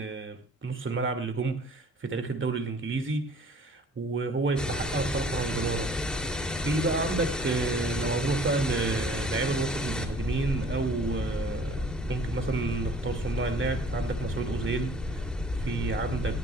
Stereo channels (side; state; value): both; normal; correlation 0.52